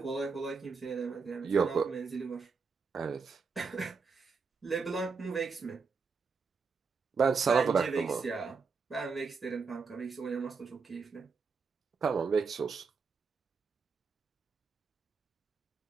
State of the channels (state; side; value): quieter; left; 5.1 dB